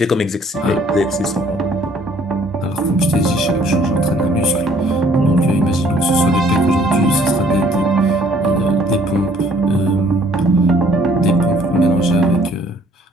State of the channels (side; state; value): both; normal; correlation 0.60